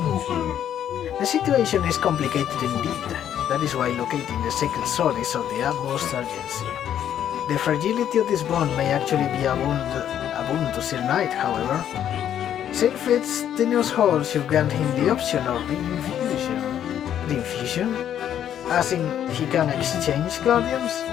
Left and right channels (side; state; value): right; quieter; 10.1 dB